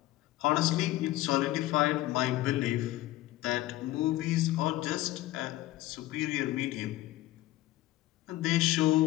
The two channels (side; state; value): right; quieter; 16.4 dB